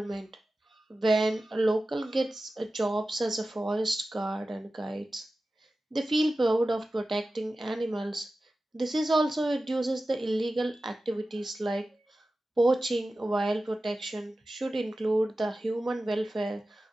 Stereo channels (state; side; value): normal; both; correlation 0.95